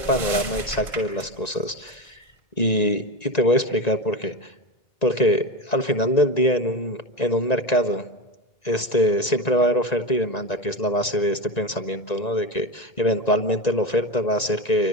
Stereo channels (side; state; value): right; late; 1.9 ms